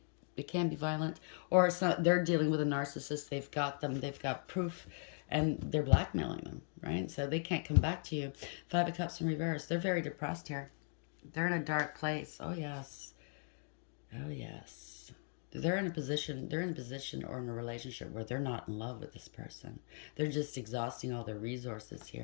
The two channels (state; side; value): silent; right; 52 dB below the other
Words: violent, or it's not, they're dealing with a narcissist. They've got them. They've got proof, and they're blackmailing them, right? So they can't come back to you. Five of Cups in reverse. They're very depressed here. They're in a dark place. Oh yes. Oh yes. They're in a position or in a relationship where they're not in love with this person. They're just exhausting all their resources